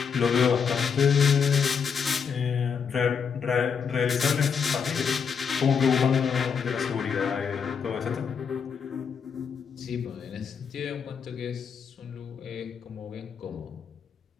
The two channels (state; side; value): quieter; right; 6.5 dB